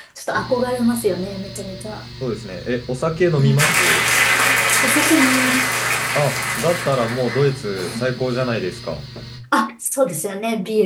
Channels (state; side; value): identical; both; correlation 1.00